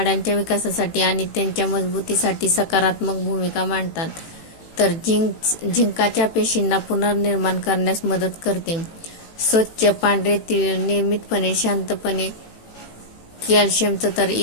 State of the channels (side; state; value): right; late; 18 ms